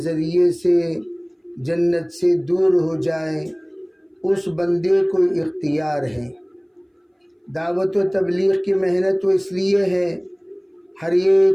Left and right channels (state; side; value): identical; both; correlation 1.00